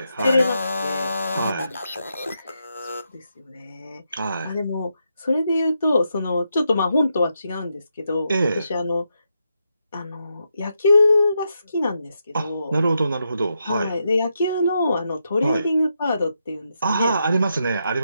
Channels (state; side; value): inverted; both; correlation -0.83